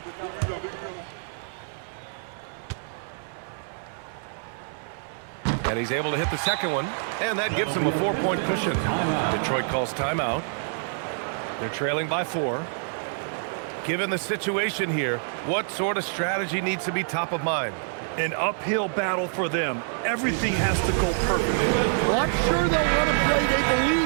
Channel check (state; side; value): silent; left; digital silence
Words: And he's able to hit the second one, and that gives him a 4-point cushion. Detroit calls timeout. They're trailing by 4. Given the situation here, what sort of strategy needs to be top of mind? An uphill battle for them. Everything has to go perfectly. Well, I'm sure they'll run a play they